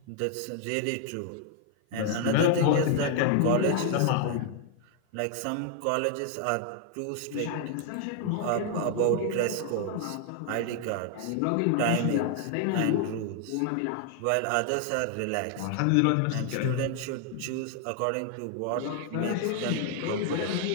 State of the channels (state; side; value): different; both; correlation 0.00